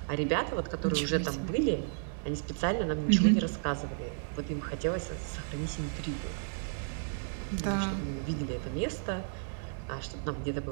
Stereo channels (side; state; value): left; silent; 56 dB below the other